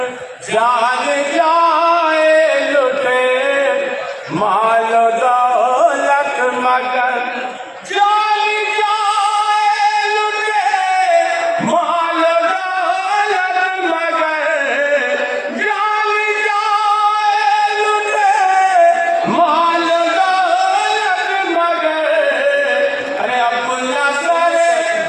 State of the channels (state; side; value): identical; both; correlation 1.00